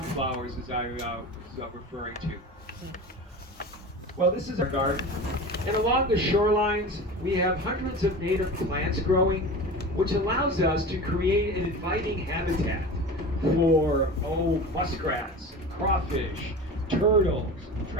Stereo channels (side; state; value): both; normal; correlation 0.32